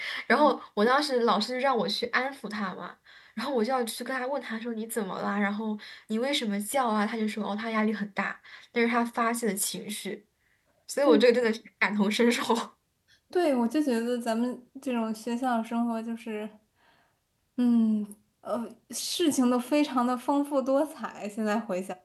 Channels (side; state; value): both; identical; correlation 1.00